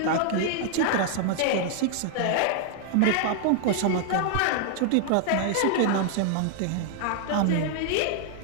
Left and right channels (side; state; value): both; different; correlation 0.00